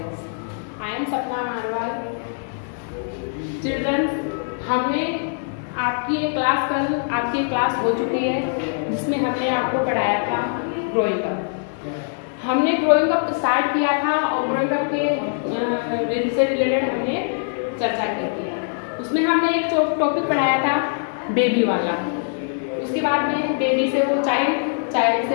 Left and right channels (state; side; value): silent; right; digital silence